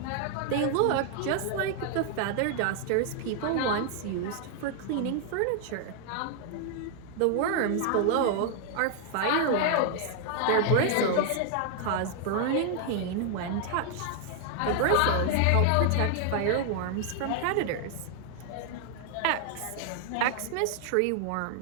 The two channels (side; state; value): both; different; correlation 0.00